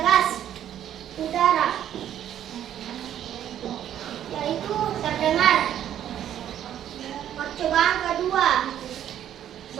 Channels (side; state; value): left; quieter; 10.7 dB